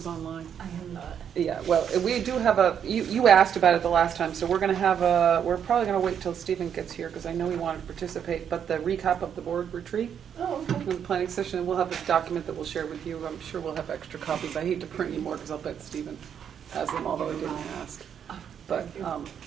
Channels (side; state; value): left; quieter; 8.3 dB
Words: online. I am not. Yeah, well, we do have you asked about it the last time, so we're gonna have we're probably gonna wait till Stephen gets here, because I know he wanted to participate, but the recap of the board retreat, Oh, okay. the planning session, we'll have this document that we'll share with you. I'm sure we'll have extra copies. I hate to print any more, because I'll bet Stephen has them, although I didn't ask. But,